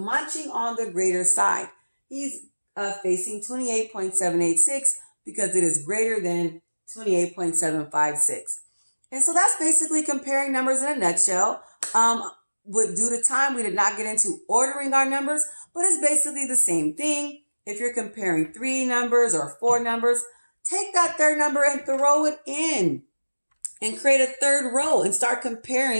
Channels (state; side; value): inverted; both; correlation -1.00